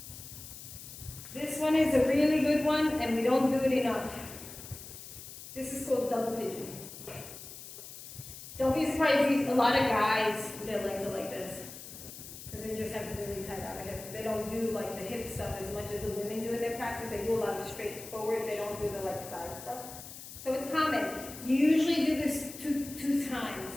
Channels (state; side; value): noise; left; hiss, 13 dB below the sound